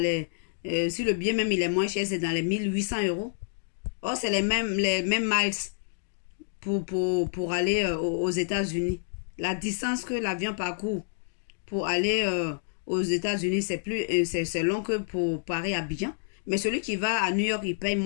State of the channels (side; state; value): right; silent; digital silence